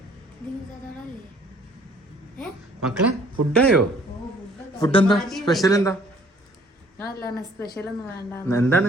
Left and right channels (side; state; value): both; normal; correlation 0.58